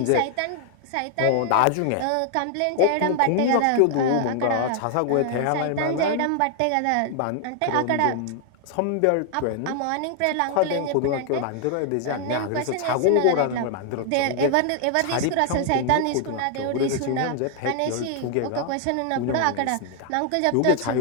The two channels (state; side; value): different; both; correlation 0.00